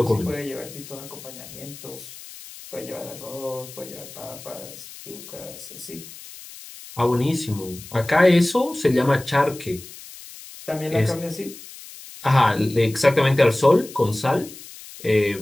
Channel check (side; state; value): left; noise; hiss, 16 dB below the sound